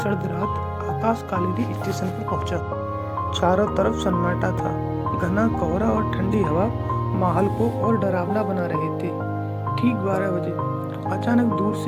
रात आकाश कालीगिरी स्टेशन पर पहुंचा। चारों तरफ सन्नाटा था। घना कोहरा और ठंडी हवा माहौल को और डरावना बना रहे थे। ठीक 12 बजे अचानक दूर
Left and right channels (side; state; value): both; identical; correlation 1.00